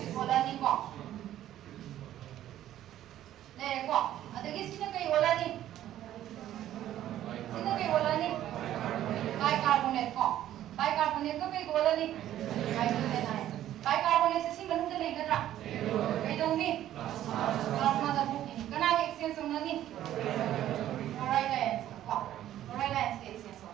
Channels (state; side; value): quieter; left; 12.4 dB